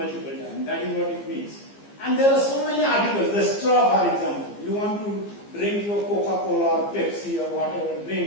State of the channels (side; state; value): right; late; 15 ms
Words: times. That is what it means. And there are so many articles. The straw, for example. You want to drink your Coca-Cola or Pepsi or whatever